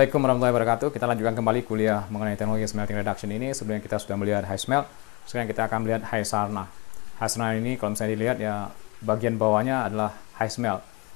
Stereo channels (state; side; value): quieter; right; 25.0 dB